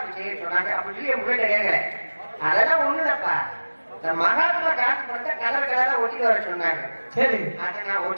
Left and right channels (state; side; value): inverted; both; correlation -1.00